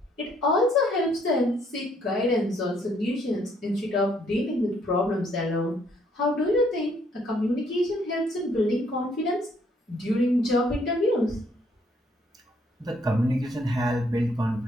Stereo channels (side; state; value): both; normal; correlation 0.67